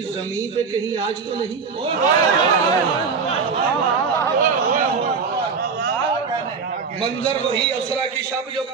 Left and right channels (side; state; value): left; quieter; 5.3 dB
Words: زمین پہ کہیں آج تو نہیں. منظر وہی اسرا کی شب جو